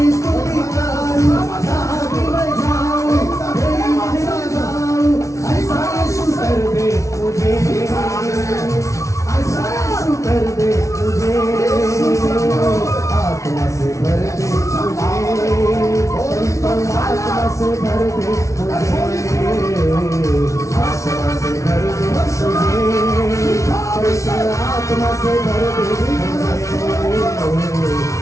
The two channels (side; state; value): right; late; 0.15 ms